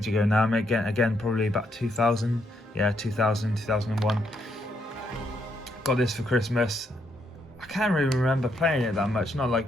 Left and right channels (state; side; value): normal; both; correlation 0.76